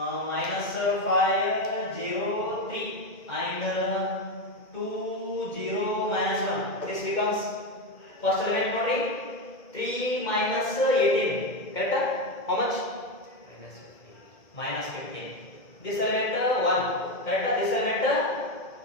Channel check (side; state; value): right; late; 2.1 ms